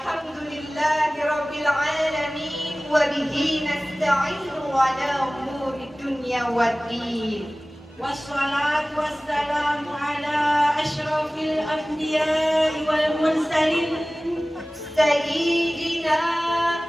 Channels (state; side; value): normal; both; correlation 0.98